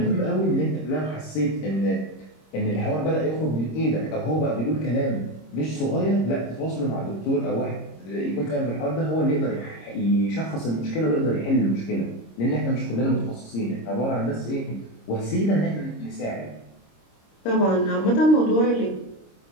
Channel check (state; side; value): late; right; 26 ms